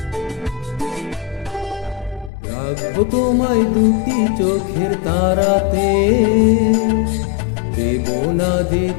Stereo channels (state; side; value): drops out; right; at 2.3 s